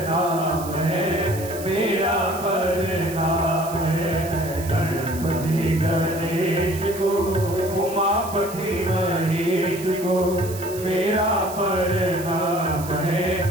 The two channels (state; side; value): noise; right; hiss, 14 dB below the sound